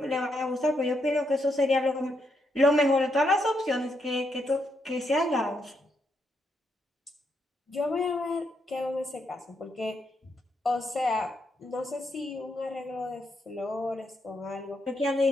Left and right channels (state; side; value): normal; both; correlation 0.79